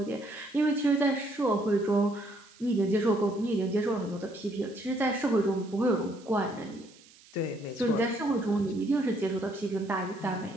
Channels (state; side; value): noise; right; hiss, 25 dB below the sound